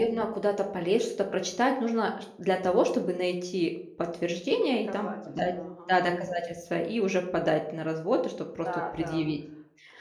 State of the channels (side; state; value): both; identical; correlation 1.00